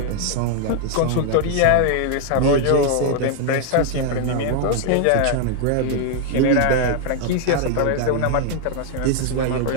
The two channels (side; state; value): both; different; correlation 0.00